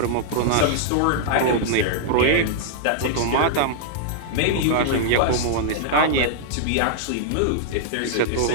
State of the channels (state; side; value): different; both; correlation -0.01